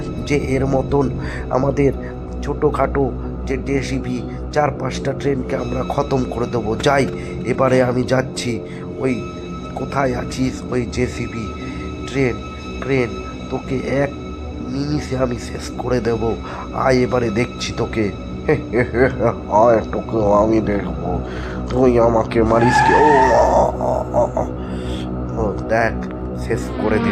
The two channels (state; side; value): identical; both; correlation 1.00